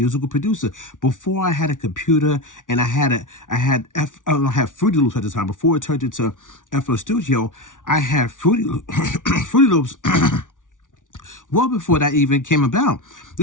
producer, before I had a computer and I had Fruity Loops at the time. Before it turned into FL Studio, I had Fruity Loops well before that even came about.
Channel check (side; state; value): right; late; 0.88 ms